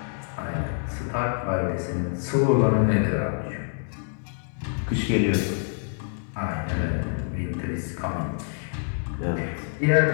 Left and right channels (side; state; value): right; silent; 60 dB below the other